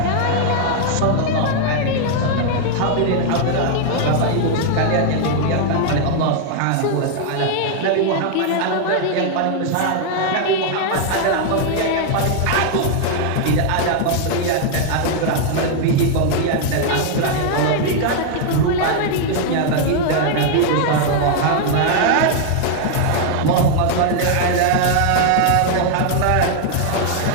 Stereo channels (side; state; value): both; different; correlation 0.00